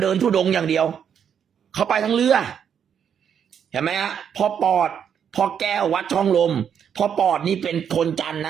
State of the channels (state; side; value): quieter; left; 8.1 dB